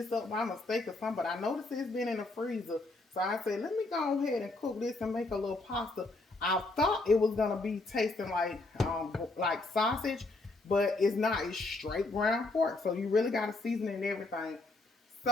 up by mistake or something, but I noticed it's been in the freezer. So I said, let me go ahead and cook this and make a little pasta. I thought it was gonna be tasting like sausage, but it's not. It's straight ground pork. So you really gotta season it and everything.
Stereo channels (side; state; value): right; quieter; 3.1 dB